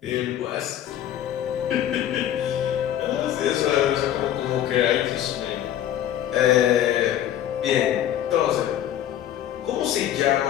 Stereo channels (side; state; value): right; quieter; 11.3 dB